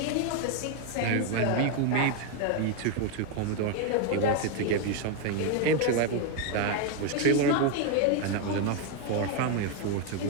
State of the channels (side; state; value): both; different; correlation 0.01